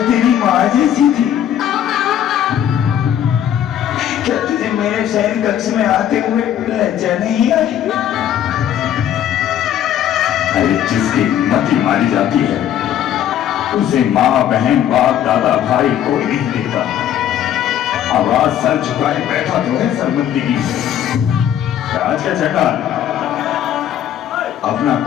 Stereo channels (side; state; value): right; quieter; 10.6 dB